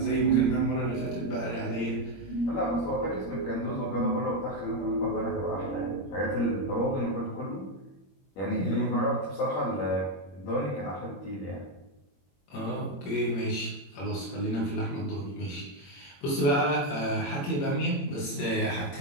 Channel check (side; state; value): right; late; 21 ms